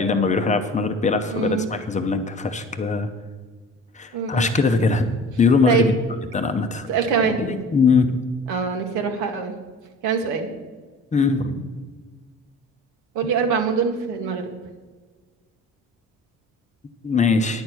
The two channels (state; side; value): normal; both; correlation 0.42